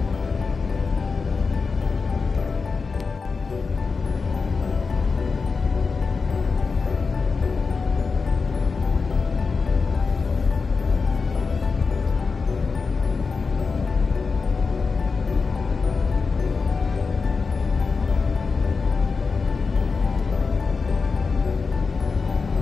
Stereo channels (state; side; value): quieter; right; 4.7 dB